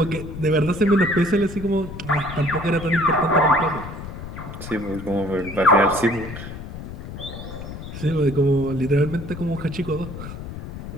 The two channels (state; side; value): noise; left; rumble, 10 dB below the sound